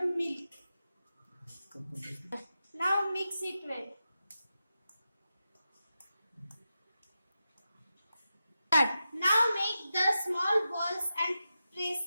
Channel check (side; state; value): both; inverted; correlation -0.90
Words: milk. Now mix it well. Now make the small balls and press